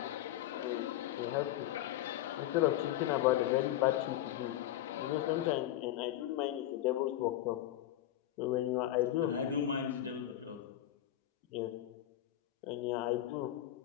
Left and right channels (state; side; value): quieter; right; 13.1 dB